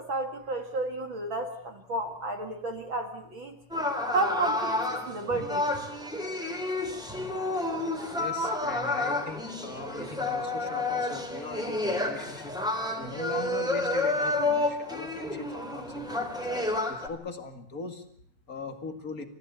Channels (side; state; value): both; normal; correlation 0.22